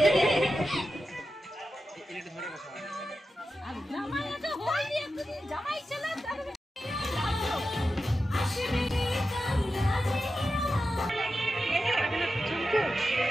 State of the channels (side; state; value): both; normal; correlation 0.91